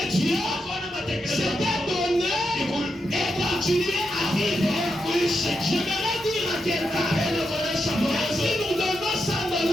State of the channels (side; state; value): both; normal; correlation 0.85